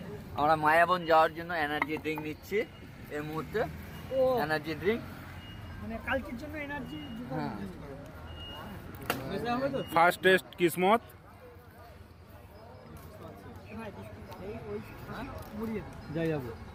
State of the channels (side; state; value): both; identical; correlation 1.00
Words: আমরা মায়াবন যাওয়ার জন্য এনার্জি ড্রিঙ্ক নিচ্ছি এই মুহূর্তে। এনার্জি ড্রিঙ্ক মানে কালকের জন্য এনার্জি। হ্যাঁ। ফার্স্ট টেস্ট কিসমত। যাই যাবো